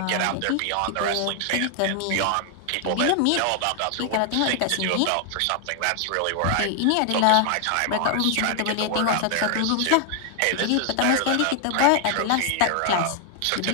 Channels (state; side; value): different; both; correlation 0.00